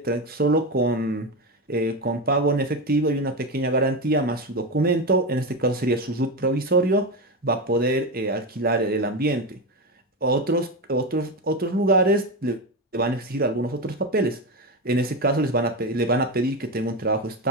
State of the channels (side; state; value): both; normal; correlation 0.16